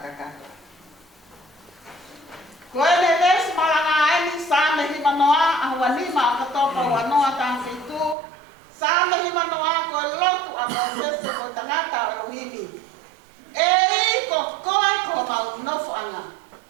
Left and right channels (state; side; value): drops out; left; at 8.2 s